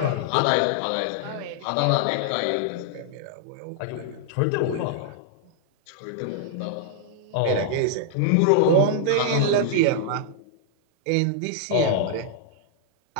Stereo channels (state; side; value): different; both; correlation -0.01